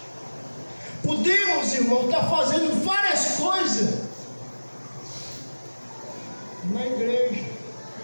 Podemos, irmão, estar fazendo várias coisas na igreja,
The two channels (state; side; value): inverted; both; correlation -1.00